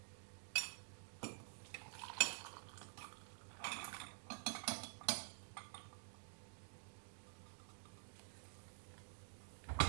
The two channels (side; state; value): left; silent; digital silence